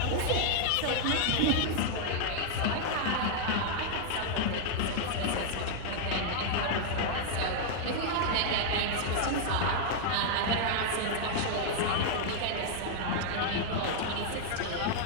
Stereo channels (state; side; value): different; both; correlation -0.01